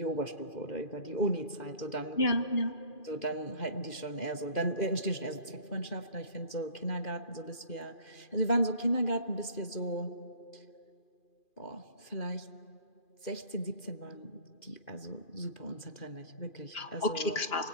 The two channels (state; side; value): late; right; 2.4 ms